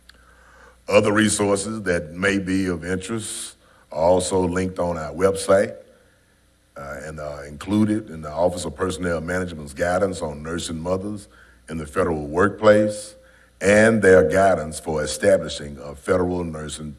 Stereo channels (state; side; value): identical; both; correlation 1.00